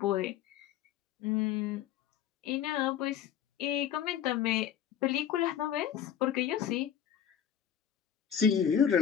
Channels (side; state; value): right; quieter; 9.4 dB